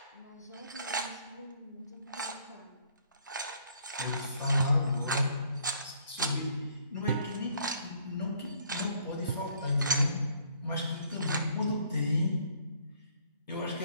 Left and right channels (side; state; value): both; inverted; correlation -0.63